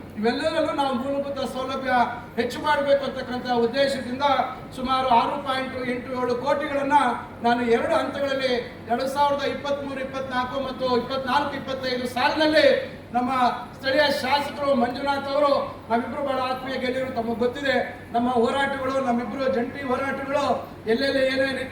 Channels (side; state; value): both; identical; correlation 1.00